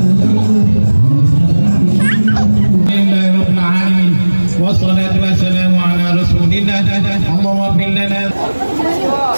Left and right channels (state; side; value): inverted; both; correlation -1.00